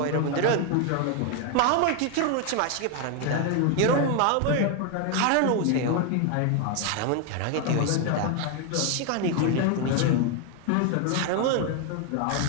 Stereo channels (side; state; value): both; different; correlation 0.01